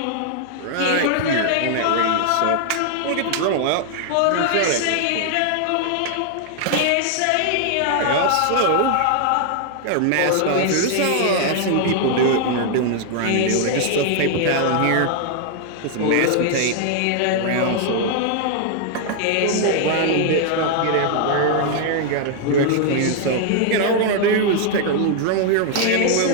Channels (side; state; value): both; different; correlation 0.00